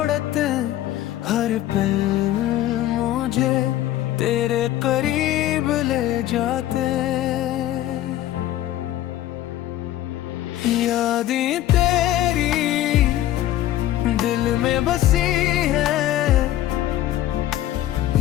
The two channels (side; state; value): right; quieter; 13.7 dB